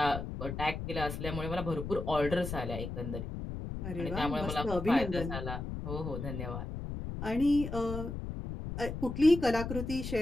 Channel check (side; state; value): left; noise; rumble, 6 dB below the sound